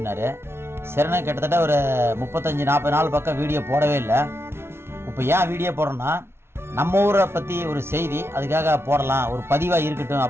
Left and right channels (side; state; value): left; late; 0.12 ms